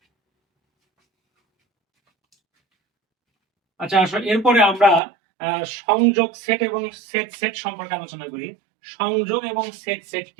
আচ্ছা আসলে এরপরে আমরা সংযোগ সেট এবং সেট সেট সম্পর্কে আলোচনা করি। সংযোগ এবং সেট সেট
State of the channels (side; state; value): left; drops out; at 5.0 s